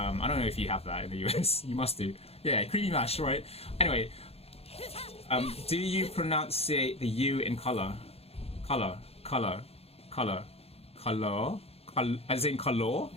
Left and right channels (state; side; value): late; right; 0.29 ms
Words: don't know if you have that in the US. You must do. Yeah, creamy mash, right? Anyway. Do you pronunciate the U in color, as in color?